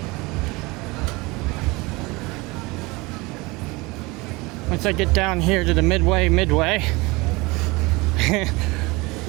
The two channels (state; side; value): quieter; left; 23.8 dB